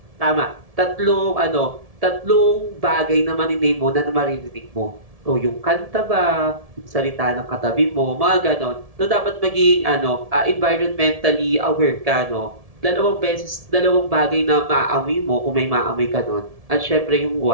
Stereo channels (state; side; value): late; left; 1.7 ms